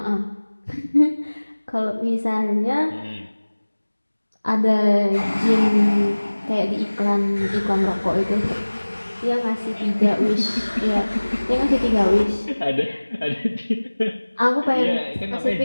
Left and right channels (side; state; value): both; inverted; correlation -1.00